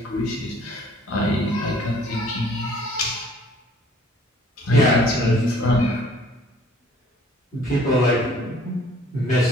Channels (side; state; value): both; normal; correlation 0.56